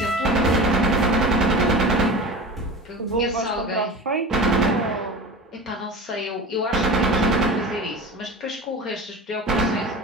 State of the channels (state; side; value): normal; both; correlation 0.33